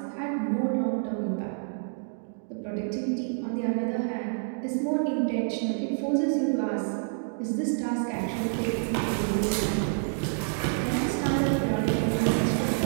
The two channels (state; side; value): silent; left; digital silence